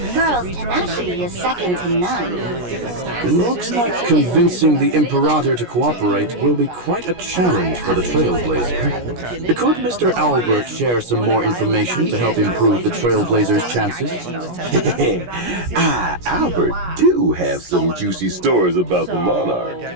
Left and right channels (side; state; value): left; late; 17 ms